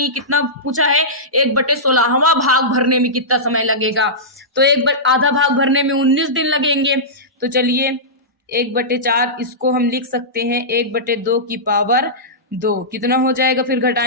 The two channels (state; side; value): normal; both; correlation -0.16